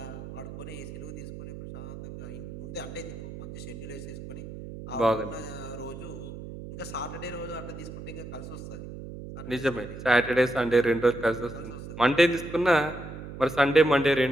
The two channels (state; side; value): noise; right; hum, 11 dB below the sound